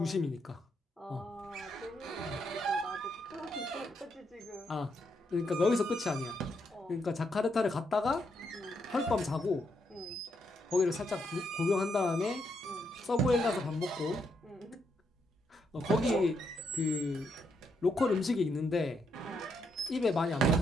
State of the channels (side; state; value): both; normal; correlation 0.78